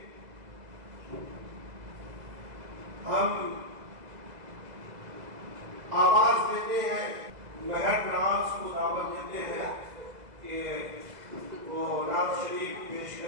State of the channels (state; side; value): late; left; 2.0 ms